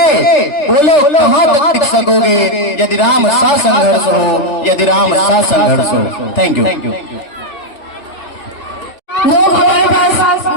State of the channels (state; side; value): late; right; 3.4 ms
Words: बोलो कहाँ तक टिक सकोगे यदि राम सा संघर्ष हो, यदि राम सा संघर्ष हो। Thank you. लोग हमारे पास